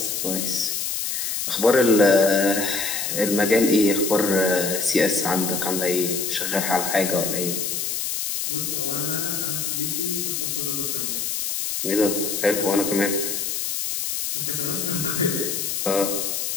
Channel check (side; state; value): left; noise; hiss, 2 dB below the sound